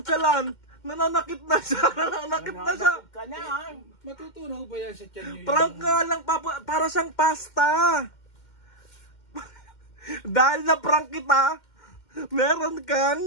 Nananakit na siya. Nananakit na siya. Ka na, ha? Matutunaw ba yan sa tiyan nyo? Prank nga lang, Papu. Para siyang pasta. Dahil na prank kita, meron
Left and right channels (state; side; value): late; right; 2.1 ms